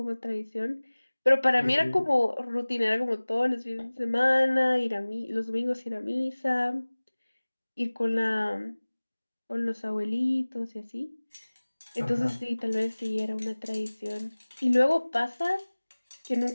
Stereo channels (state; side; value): inverted; both; correlation -1.00